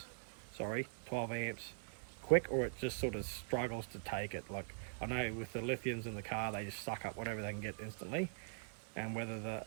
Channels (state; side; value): silent; left; digital silence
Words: quick, or it just sort of struggles to take it. Like I know with the lithiums in the car, they just suck up whatever they can get instantly, and whether the